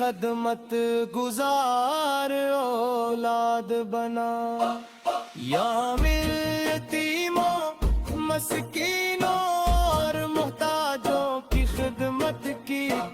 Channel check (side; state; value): both; identical; correlation 1.00